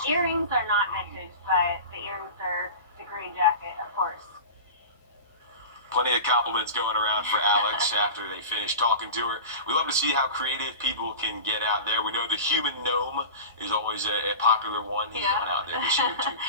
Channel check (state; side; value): inverted; both; correlation -0.31